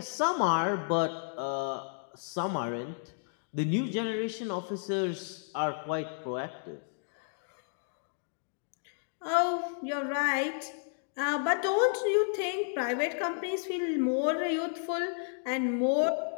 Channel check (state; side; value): silent; right; digital silence